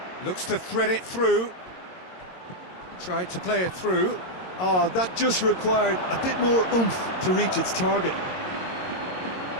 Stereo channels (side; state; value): right; late; 22 ms